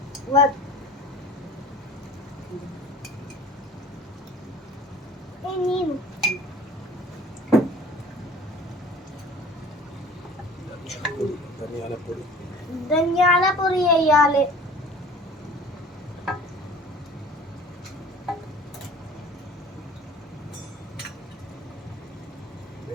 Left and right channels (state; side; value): normal; both; correlation 0.45